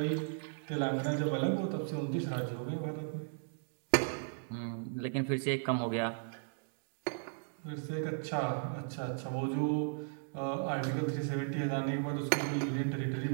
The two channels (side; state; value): left; silent; digital silence